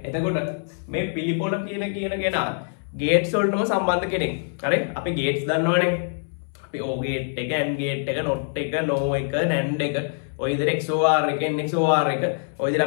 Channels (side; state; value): right; silent; 62 dB below the other